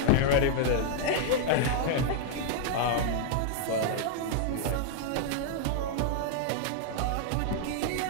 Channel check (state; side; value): different; both; correlation 0.00